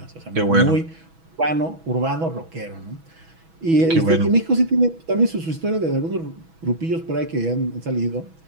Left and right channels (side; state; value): left; late; 6.2 ms